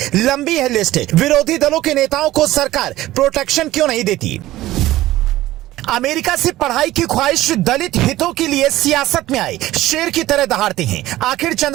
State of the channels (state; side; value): quieter; left; 15.9 dB